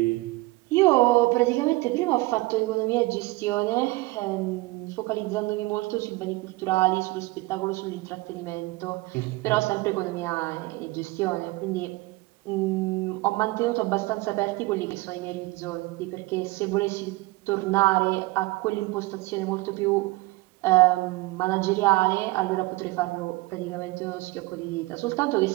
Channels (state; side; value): quieter; left; 21.6 dB